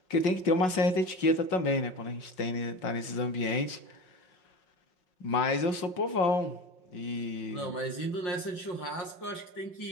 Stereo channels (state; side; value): late; right; 5.5 ms